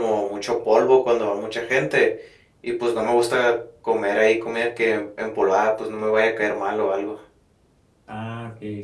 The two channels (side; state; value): both; identical; correlation 1.00